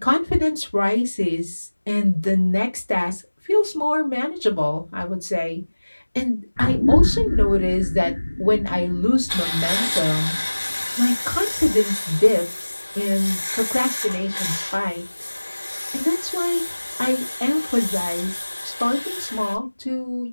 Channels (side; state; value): both; inverted; correlation -1.00